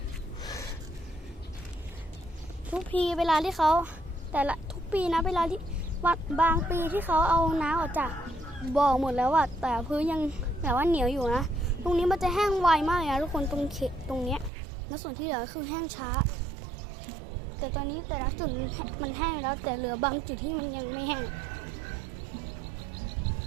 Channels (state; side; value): drops out; left; at 14.5 s